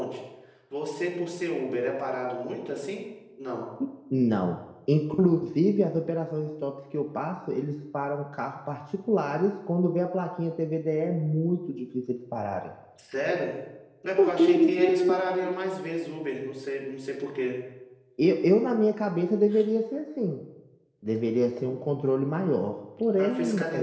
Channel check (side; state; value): both; identical; correlation 1.00